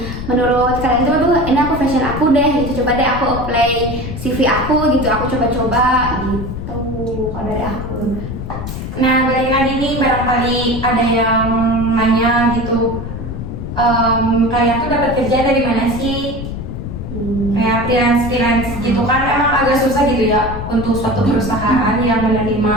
menurut kalian tuh aduh ini aku fashion aku deh gitu, coba deh aku apply CV aku gitu, aku coba-coba gitu. Kalau dari aku. Nah, balik lagi nih, barangkali ada yang nanya gitu, kalian tuh dapat kerja dari mana sih? Kayak freelance gitu kan, emang agak susah gitu ya untuk suatu perusahaan yang menerima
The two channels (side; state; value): left; noise; rumble, 7 dB below the sound